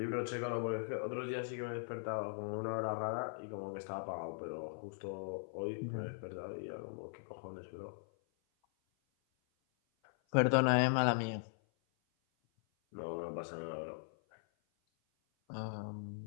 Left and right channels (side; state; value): right; silent; 51 dB below the other